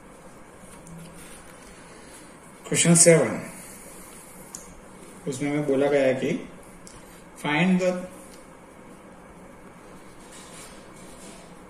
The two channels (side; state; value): both; identical; correlation 1.00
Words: क्वेश्चन 7 उसमें हमें बोला गया है कि find the